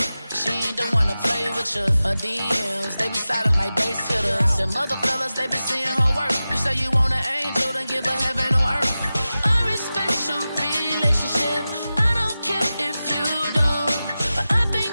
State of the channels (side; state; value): both; inverted; correlation -0.95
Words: She ain't the one to play with picture. Her DMs, they be silent like bass hitters. Them other fellas, they be seeing her work. You say you want an angel, then give her heaven on earth. I respect your relationship. I don't care if you don't. But I